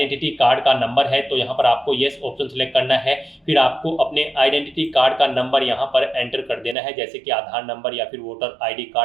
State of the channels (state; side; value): drops out; left; at 6.8 s